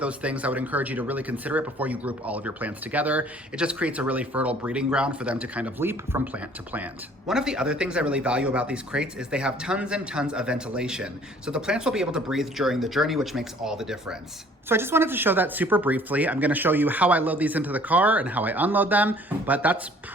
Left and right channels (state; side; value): normal; both; correlation 0.55